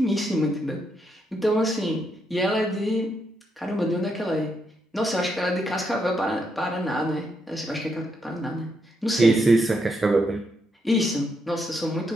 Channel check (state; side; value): normal; both; correlation 0.79